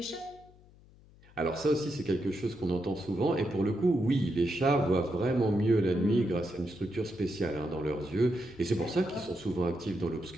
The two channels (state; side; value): noise; left; hum, 25 dB below the sound